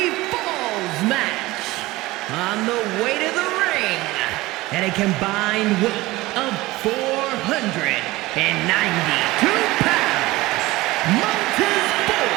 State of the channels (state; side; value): quieter; left; 19.4 dB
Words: falls match. On the way to the ring, at a combined weight of 492 pounds, Montez